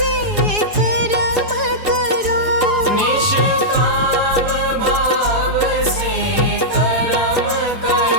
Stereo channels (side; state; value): left; late; 4.8 ms